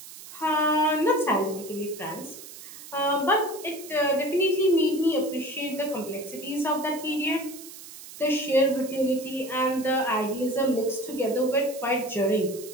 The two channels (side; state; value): right; noise; hiss, 15 dB below the sound